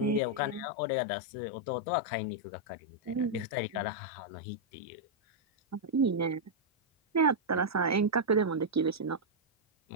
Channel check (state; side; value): normal; both; correlation -0.06